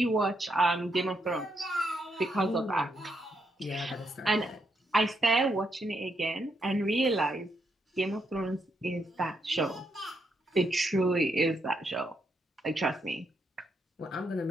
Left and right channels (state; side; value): normal; both; correlation 0.79